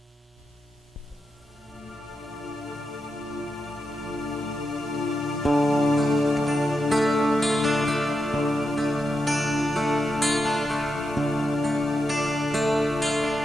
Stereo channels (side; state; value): both; normal; correlation 0.86